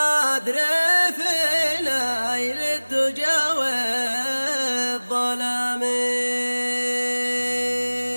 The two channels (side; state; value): both; inverted; correlation -1.00